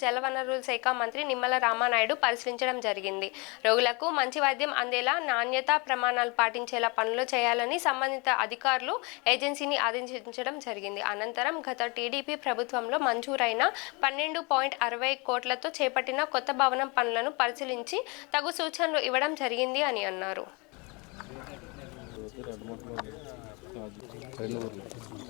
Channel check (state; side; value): quieter; right; 29.0 dB